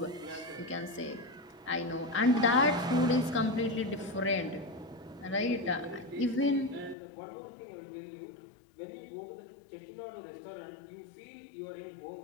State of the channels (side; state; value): right; drops out; at 7.0 s